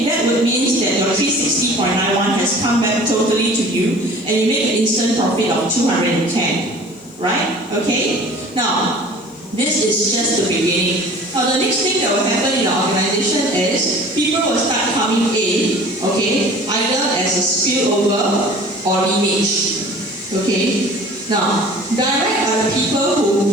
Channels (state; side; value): noise; left; hiss, 30 dB below the sound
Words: that would mean that your 360.91 has come back totally to you, and you make an instant profit of 210. Right? Okay? Now, this is just the beginning. Now, the next thing that will happen in the organization is people will start coming in, okay, either as a spillover or lineage. Okay? Now, direct are the people who